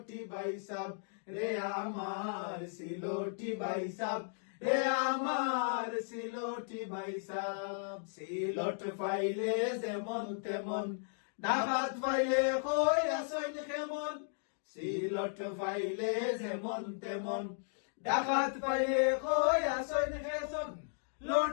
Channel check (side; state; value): right; silent; digital silence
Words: ভাই সাব রে, আমার সিলোটি ভাই সাব রে, আমার সিলোটি ভাই সাব। সিলট ফাইলে যেমন তেমন, ডাকাত ফাইলে কই আসন কেমন। সিলট ফাইলে যেমন তেমন, ডাকাত ফাইলে কই আসন কেমন।